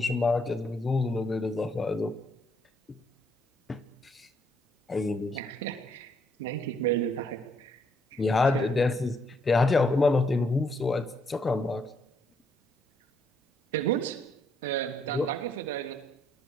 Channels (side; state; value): both; normal; correlation 0.71